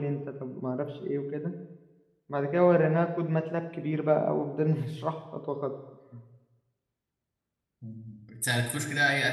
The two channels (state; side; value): identical; both; correlation 1.00